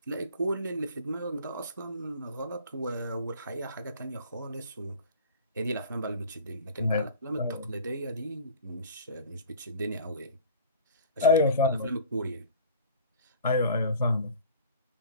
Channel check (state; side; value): inverted; both; correlation -0.44